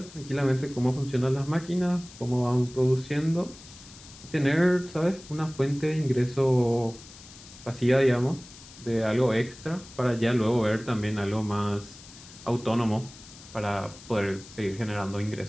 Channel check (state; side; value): noise; left; hiss, 19 dB below the sound